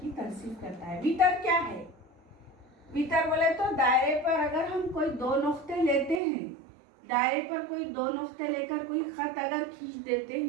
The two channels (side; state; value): left; drops out; at 6.2 s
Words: तंसीफ करता है। वितर क्या है? वितर बोले तो दायरे पर अगर हम कोई दो नुक्ते लेते हैं, दायरे पर कोई दो नुक्ते लेकर कोई खत अगर खींच देते